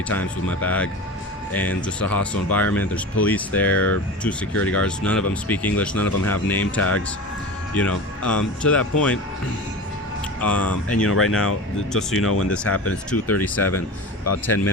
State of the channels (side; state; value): both; normal; correlation 0.31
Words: times with my bag. And just a hostile environment. There's police there, 2 security guards. None of them speak English. None of them have name tags. To that point, and right now, just so you know, when this happened, it's 2:37, about 10